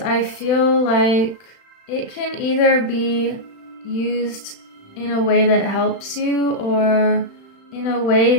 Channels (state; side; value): late; right; 35 ms